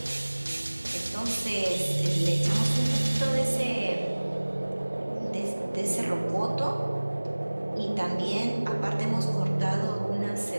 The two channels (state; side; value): inverted; both; correlation -1.00